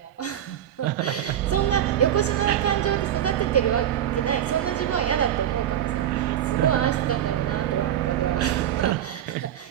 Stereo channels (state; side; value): quieter; left; 10.8 dB